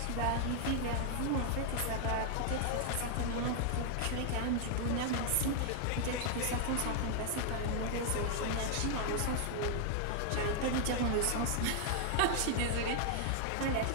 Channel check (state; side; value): different; both; correlation 0.00